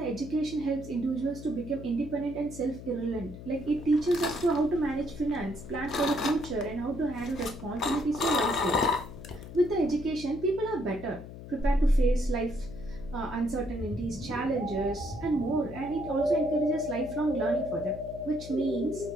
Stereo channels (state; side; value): noise; left; hum, 13 dB below the sound